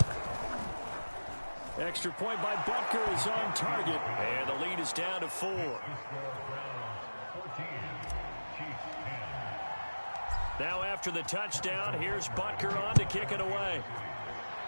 Extra point by Butker is on target. And the lead is down to 4. Now after the touchdown, here's Butker on to kick it away.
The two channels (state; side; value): inverted; both; correlation -1.00